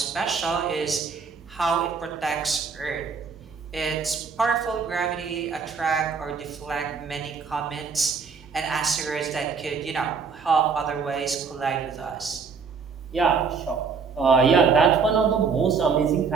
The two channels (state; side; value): quieter; left; 5.5 dB